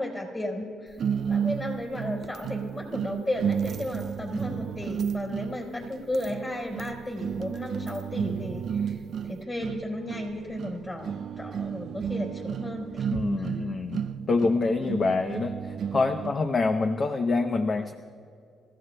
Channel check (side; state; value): both; normal; correlation 0.82